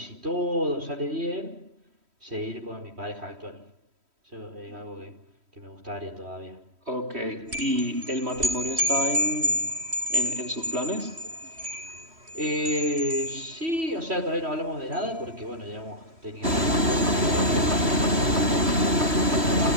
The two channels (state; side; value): late; left; 3.1 ms